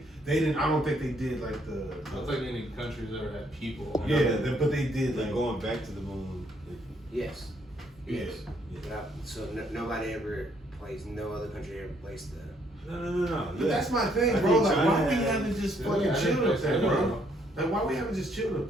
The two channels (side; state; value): both; normal; correlation 0.69